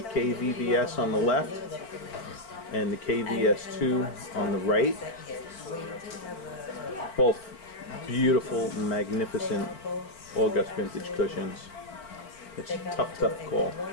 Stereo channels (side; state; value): right; late; 4.4 ms